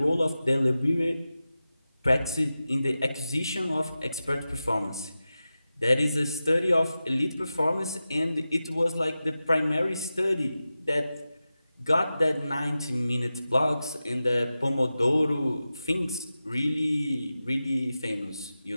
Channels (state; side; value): inverted; both; correlation -0.93